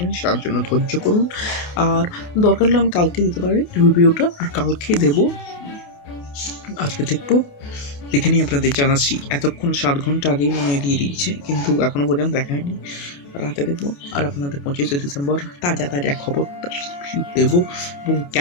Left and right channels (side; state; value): right; late; 28 ms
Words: তার জন্য ধৈর্য করুন। আর দরকার হলে আমি কালকে দিতে পারি রিভিউটা, আর কালকে দেবো, আজকে দেখবো, দেখে নিয়ে আপনাদের জানাচ্ছি। এতক্ষণ 7 ঘন্টা আগেই মনে হয় দিয়ে দিয়েছে, কিন্তু এখনো পর্যন্ত দেখা হয়নি, রাতে দেখবো। আর আপনাদের 25শে ডিসেম্বর তাজা তাজা খবরটা দেবো, এবং